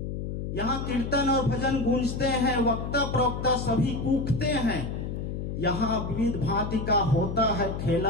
यहाँ कीर्तन और भजन गूंजते हैं, वक्ता प्रवक्ता सभी कूकते हैं। यहाँ विविध भांति का होता है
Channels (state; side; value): noise; left; hum, 5 dB below the sound